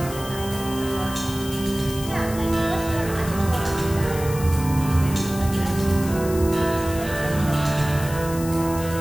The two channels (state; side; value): noise; left; hiss, 12 dB below the sound